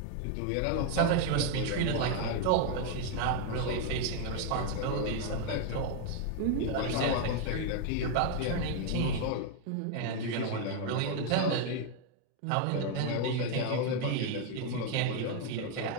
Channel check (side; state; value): both; different; correlation 0.00